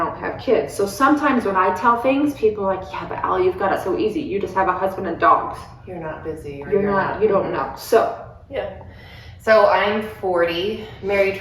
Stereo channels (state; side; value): identical; both; correlation 1.00